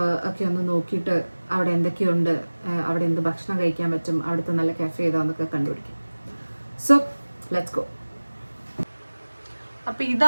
ഒക്കെ ഒന്ന് നോക്കിയിട്ട് അവിടെ എന്തൊക്കെയുണ്ട്, അവിടെ എന്ത് ഭക്ഷണം കഴിക്കാൻ പറ്റും, അവിടുത്തെ നല്ല കഫേ ഏതാന്നൊക്കെ കണ്ടുപിടിക്കും. So let's go. അപ്പോൾ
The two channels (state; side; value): inverted; both; correlation -1.00